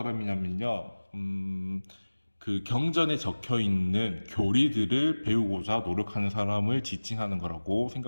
그 경전에 적혀 있는 교리들을 배우고자 노력하는 사람을 지칭하는 거라고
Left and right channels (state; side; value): inverted; both; correlation -1.00